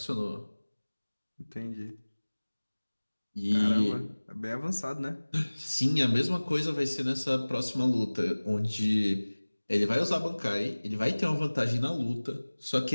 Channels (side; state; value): both; inverted; correlation -1.00